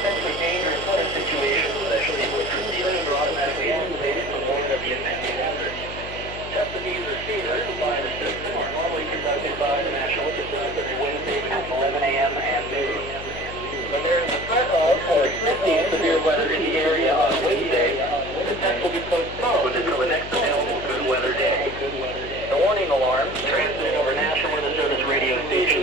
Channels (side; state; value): left; noise; hum, 12 dB below the sound